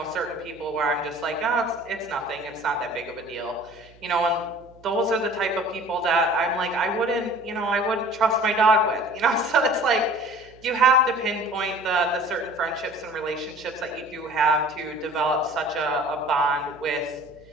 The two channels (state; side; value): noise; right; hum, 26 dB below the sound